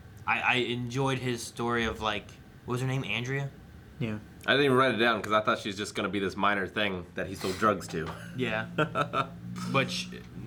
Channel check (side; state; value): both; identical; correlation 1.00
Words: I enjoyed his story of like, what was her name, Andrea? Yeah. I didn't even write it down because I thought she was just going to be this minor thing that he sold drugs to. Yeah. But